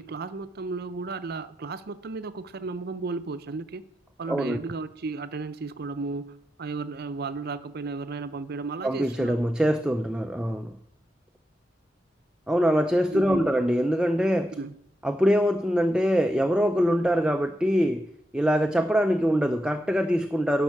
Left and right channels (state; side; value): normal; both; correlation 0.86